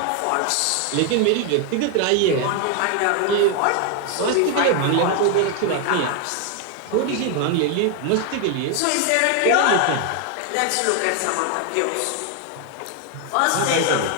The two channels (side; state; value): both; different; correlation 0.01